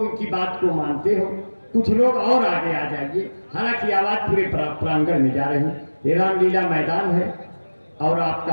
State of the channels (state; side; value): inverted; both; correlation -1.00